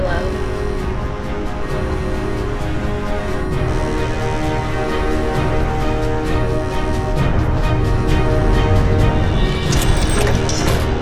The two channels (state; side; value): identical; both; correlation 1.00